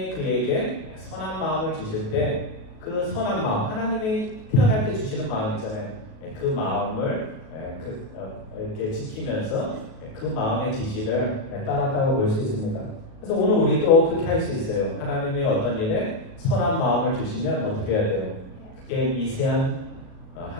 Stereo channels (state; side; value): late; right; 37 ms